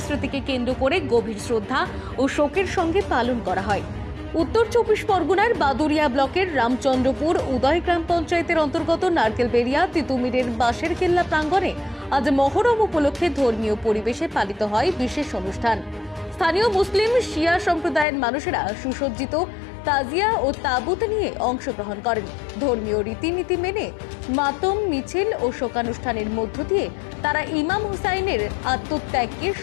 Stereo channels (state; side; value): drops out; right; at 18.1 s